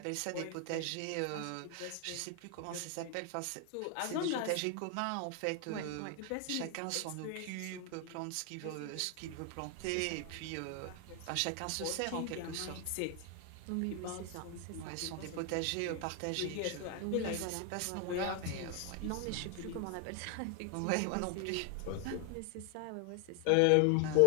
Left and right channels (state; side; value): different; both; correlation 0.00